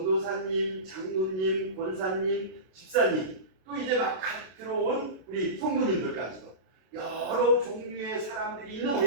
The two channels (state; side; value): late; left; 32 ms